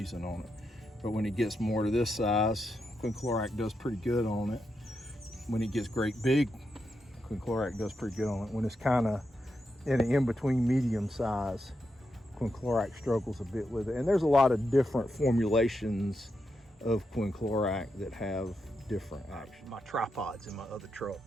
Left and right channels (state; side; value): normal; both; correlation 0.85